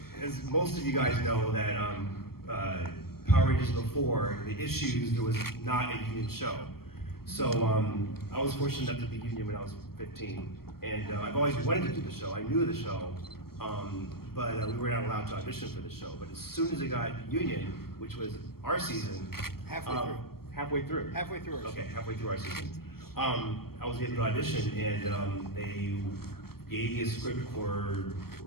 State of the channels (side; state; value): right; late; 0.94 ms